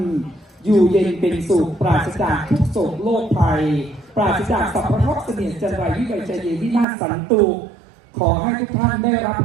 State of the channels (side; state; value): left; drops out; at 6.9 s